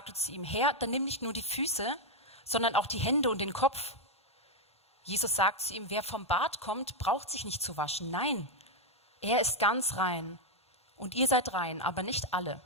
zu ihm: Herr, dann nimm nicht nur die Füße, sondern auch die Hände und den Kopf. Jesus sagt zu ihm: Wer vom Bad kommt, braucht sich nicht zu waschen. Nein, er ist ganz rein. Und ihr seid rein, aber nicht alle.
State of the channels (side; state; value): both; normal; correlation 0.01